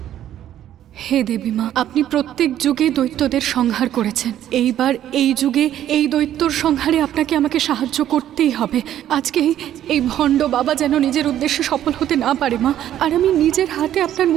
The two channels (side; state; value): left; quieter; 11.5 dB